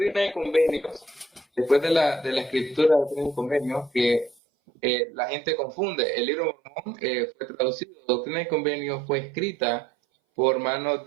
y Convenios, después de la escritura de Doctrina y Convenios, que la gente confunde, el libro de Mormón fue traducido, Doctrina y Convenios fue escrita por manos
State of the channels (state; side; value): drops out; left; at 4.4 s